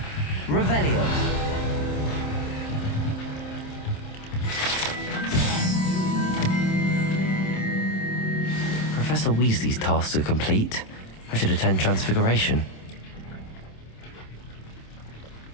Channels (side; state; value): right; late; 27 ms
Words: Revelio! Professor Weasley's tasks are complete. I should attend Transfiguration.